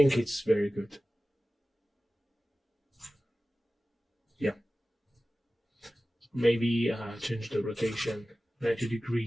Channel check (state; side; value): normal; both; correlation 0.96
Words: it's very good. Yeah, maybe change the rotation 90 degree